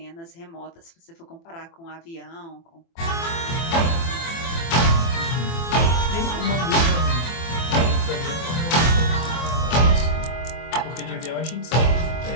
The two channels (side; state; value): right; late; 24 ms